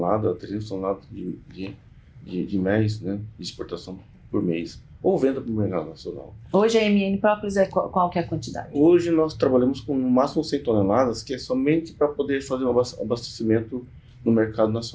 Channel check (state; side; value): identical; both; correlation 1.00